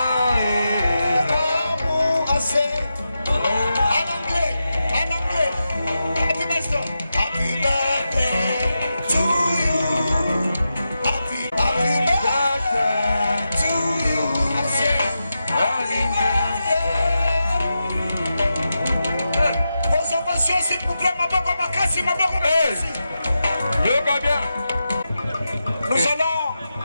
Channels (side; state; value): both; inverted; correlation -0.89